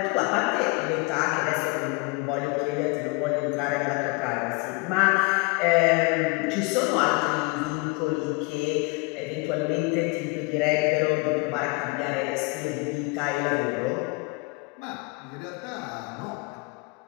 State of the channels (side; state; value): right; quieter; 28.6 dB